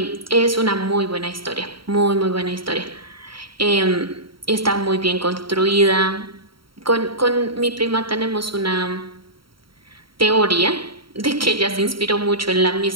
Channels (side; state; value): left; late; 0.74 ms